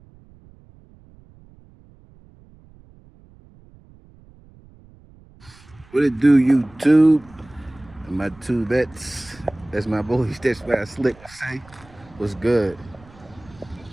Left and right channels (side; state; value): right; noise; rumble, 25 dB below the sound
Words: What it do, YouTube? And my two bets. That's my boys. That's what I slick to say. What's good?